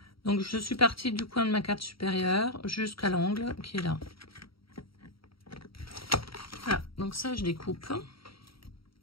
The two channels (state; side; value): late; right; 0.75 ms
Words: Donc je suis partie du coin de ma carte supérieure jusqu'à l'angle qui est là. Voilà, donc ça je découpe.